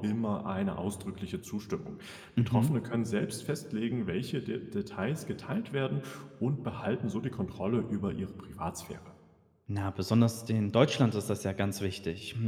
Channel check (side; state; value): both; identical; correlation 1.00